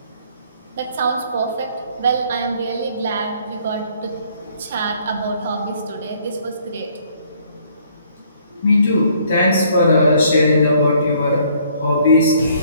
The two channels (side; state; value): both; inverted; correlation -0.63